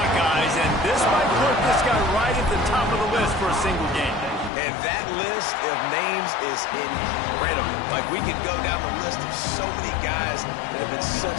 and this might put this guy right at the top of the list for a single game. And that list of names is incredible. Like, we could go down the list of so many guys that have been such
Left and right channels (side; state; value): right; drops out; at 4.5 s